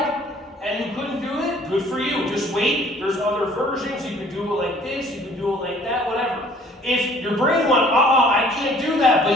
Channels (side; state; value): both; normal; correlation 0.56